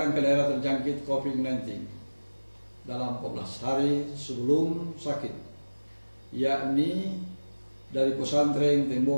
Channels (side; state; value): both; inverted; correlation -1.00